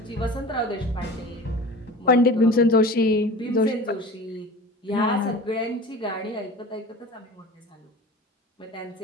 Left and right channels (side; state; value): both; normal; correlation 0.37